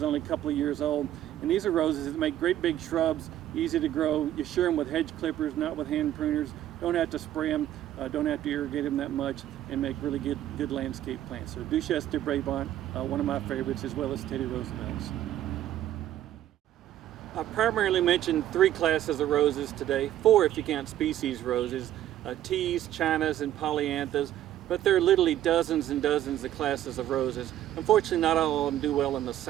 only a couple of years old, and these are roses that make great big shrubs, easy to grow. You shear them with hedge clippers, not with hand pruners. Don't have to spray them, don't have to irrigate them that much, and make really good landscape plants. So Duchesse de Bourbon, one of my favorites, as well as Teddy Roosevelt's. I primarily mentioned 3 classes of roses today, 4 if you count species roses, teas, chinas, and polyanthas, but there are literally dozens and dozens of classes of roses. Unfortunately, not all of them do well in the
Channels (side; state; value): left; quieter; 12.4 dB